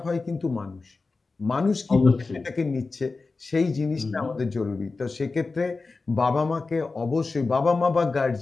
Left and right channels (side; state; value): right; quieter; 3.9 dB